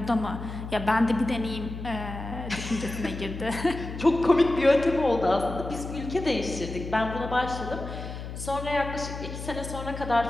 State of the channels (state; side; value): noise; left; hum, 9 dB below the sound